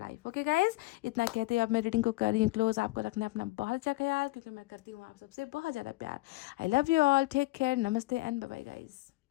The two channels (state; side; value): quieter; right; 20.8 dB